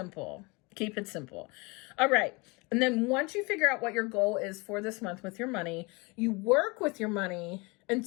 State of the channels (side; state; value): right; quieter; 27.1 dB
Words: Keep it simple. All right. And then once you figure out what your goal is for this month with your money, you work with your money